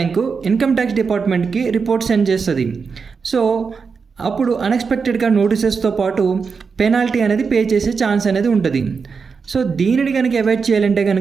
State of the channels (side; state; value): left; quieter; 5.4 dB